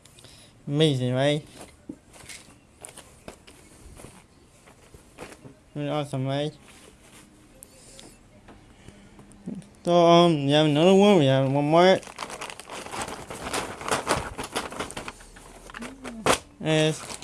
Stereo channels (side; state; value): both; identical; correlation 1.00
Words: Amazing, right? Really awesome, right? So we have another one. We have one more. It's